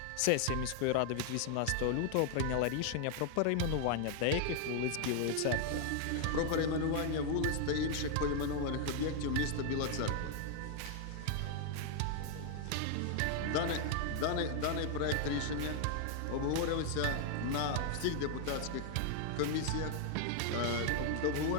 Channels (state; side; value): different; both; correlation 0.00